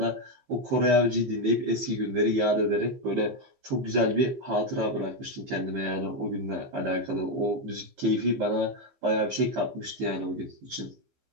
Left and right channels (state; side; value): late; left; 15 ms